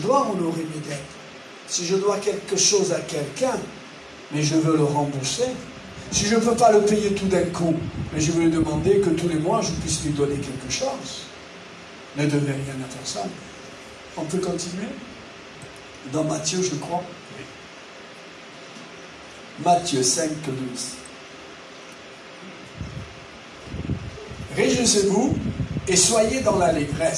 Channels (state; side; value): identical; both; correlation 1.00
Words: honorer mes dettes. Si je dois quelque chose à quelqu'un, mais je veux le rembourser. Si je ne peux pas le payer tout d'un coup, mais je veux lui demander que tous les mois, je puisse lui donner quelque chose. Ne devez rien à personne. On peut continuer? Dans Matthieu, je crois. Matthieu 5, 12. Réjouissez-vous et soyez dans